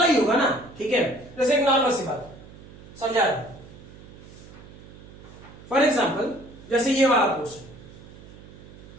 ही होगा ना। ठीक है, जैसे एक नॉर्मल सी बात समझा रहा हूं, फॉर एग्जाम्पल जैसे ये वाला क्वेश्चन,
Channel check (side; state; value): right; noise; hum, 19 dB below the sound